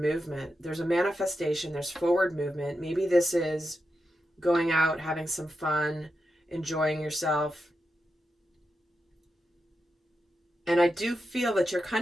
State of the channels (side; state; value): both; normal; correlation 0.88